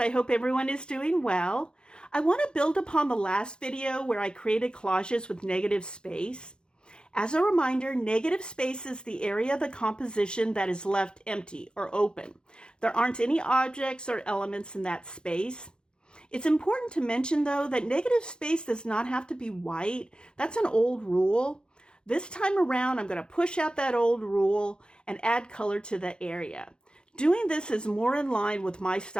hope everyone is doing well. I want to build upon the last video where I created collages with negative space. As a reminder, negative space is the area of the composition that is left empty or open. There aren't any objects or elements in that space. It's important to mention though that negative space does not have to be white. That's an old rule. This time around, I'm going to push out that old rule and add color to the area. Doing this is more in line with my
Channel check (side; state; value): right; late; 0.049 ms